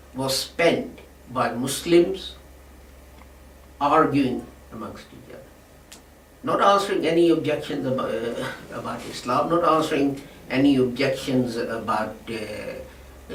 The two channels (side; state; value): both; identical; correlation 1.00